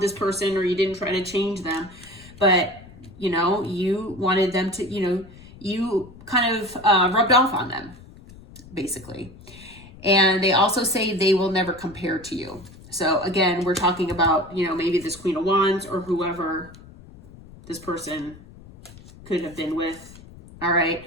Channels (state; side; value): noise; left; rumble, 20 dB below the sound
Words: person or you didn't try to change them, but, you wanted them to, you kind of rubbed off on them, basically. And they also say they will never compare to you. So again, we're talking about, maybe this Queen of Wands or whoever this person could have been with. All right.